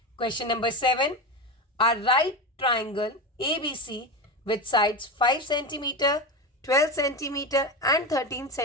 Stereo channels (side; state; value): both; normal; correlation 0.20